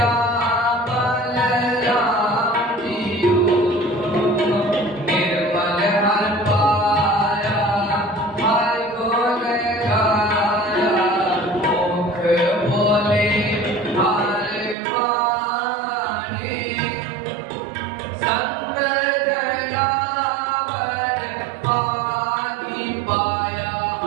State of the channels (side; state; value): left; drops out; at 14.8 s